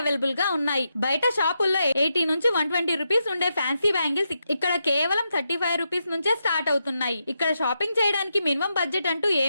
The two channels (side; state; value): both; inverted; correlation -0.84